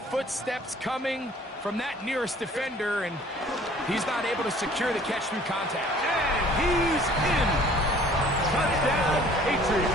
coming from that nearest defender, and he's not able to secure the catch through contact. And he's in. Touchdown,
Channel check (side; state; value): both; normal; correlation 0.53